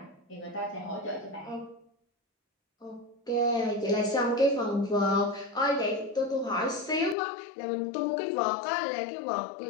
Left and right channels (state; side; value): drops out; right; at 7.2 s